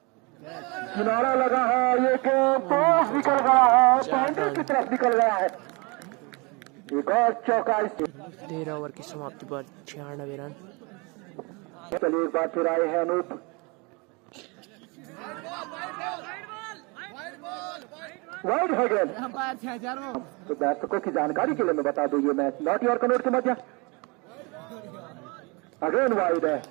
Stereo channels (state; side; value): quieter; left; 29.0 dB